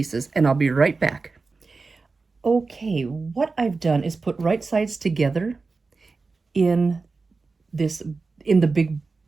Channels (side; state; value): left; quieter; 4.1 dB